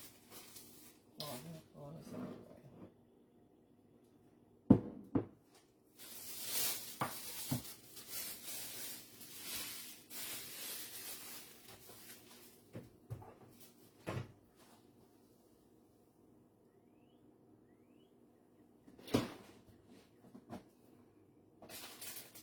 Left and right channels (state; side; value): identical; both; correlation 1.00